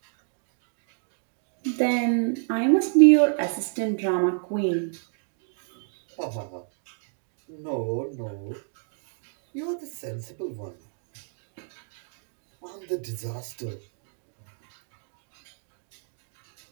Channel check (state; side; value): silent; left; 59 dB below the other